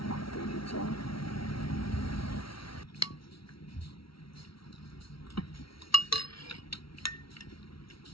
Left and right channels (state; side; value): late; right; 0.75 ms